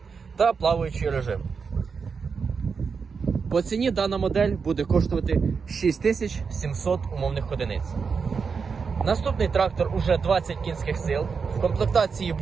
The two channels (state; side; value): quieter; left; 5.5 dB